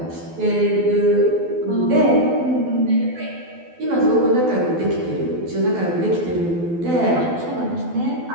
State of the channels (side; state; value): left; late; 12 ms